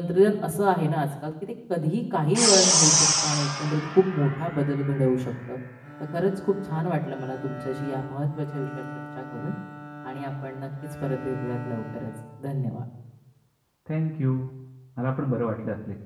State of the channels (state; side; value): identical; both; correlation 1.00